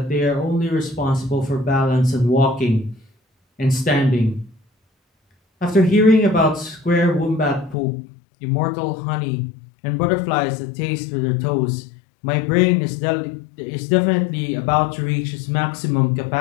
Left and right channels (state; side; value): drops out; right; at 7.8 s